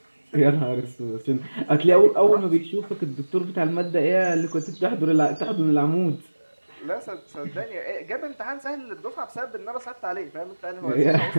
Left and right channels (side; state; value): both; inverted; correlation -1.00